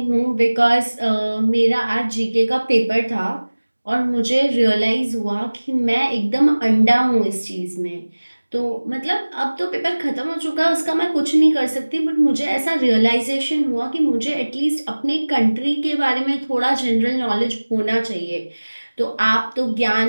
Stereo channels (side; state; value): both; inverted; correlation -1.00